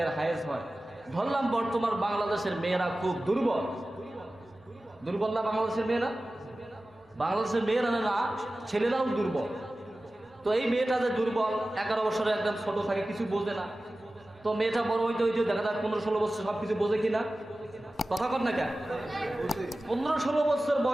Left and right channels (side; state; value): both; normal; correlation 0.96